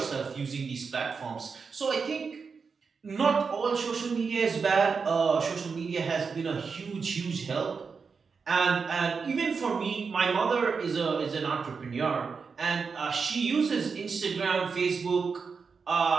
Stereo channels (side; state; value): left; quieter; 5.3 dB